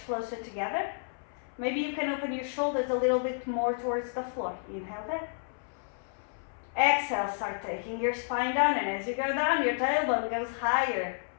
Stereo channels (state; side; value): silent; right; 57 dB below the other